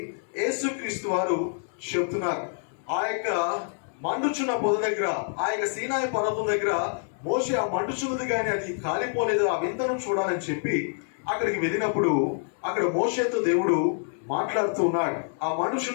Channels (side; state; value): right; silent; 60 dB below the other